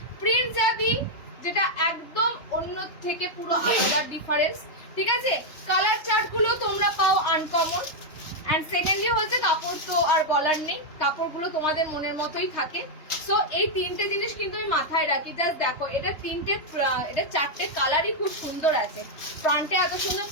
প্রিন্ট যা দিই, যেটা একদম অন্য থেকে পুরো আলাদা ডিফারেন্স, ঠিক আছে। কালার চার্ট গুলো তোমরা পাও আনকমন। এন্ড সেকেন্ডলি হচ্ছে কাপড় তো আর বলার নেই, কাপড়গুলো তোমাদের মনের মতোই থাকে। সো এই 3টে জিনিস কিন্তু আমি মাথায় রাখি। জাস্ট দেখো, এটা 4টে কালারই খুব সুন্দর আছে। ফ্রন্টে এত সুন্দর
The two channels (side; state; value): right; late; 3.2 ms